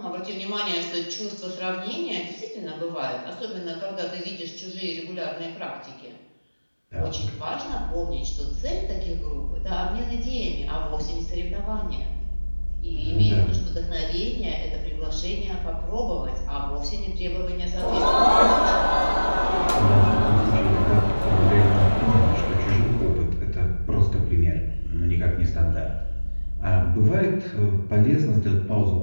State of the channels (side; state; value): both; inverted; correlation -1.00